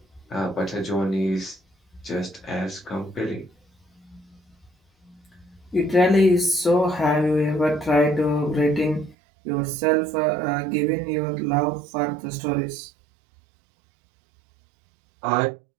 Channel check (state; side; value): drops out; left; at 9.2 s